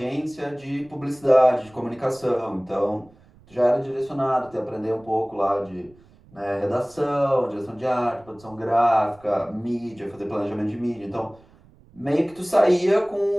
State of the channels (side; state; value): right; noise; rumble, 27 dB below the sound